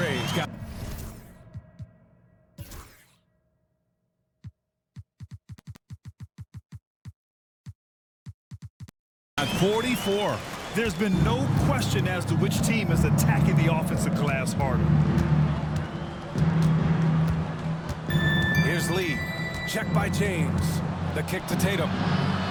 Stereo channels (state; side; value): identical; both; correlation 1.00